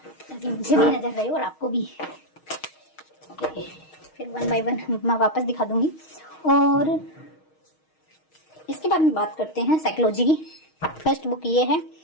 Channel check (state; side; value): late; right; 6.4 ms